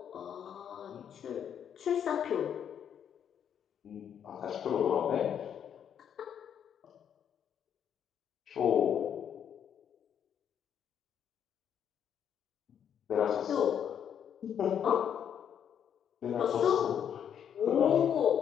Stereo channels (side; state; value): right; quieter; 8.7 dB